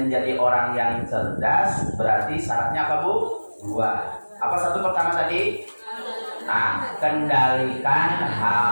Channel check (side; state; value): both; inverted; correlation -1.00